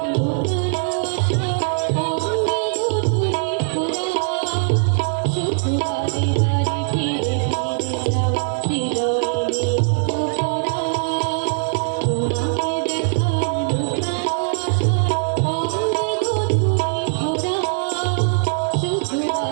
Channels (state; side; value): silent; left; digital silence